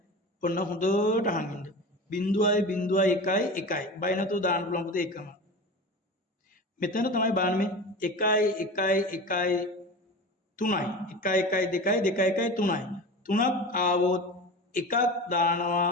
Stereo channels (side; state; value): both; normal; correlation 0.31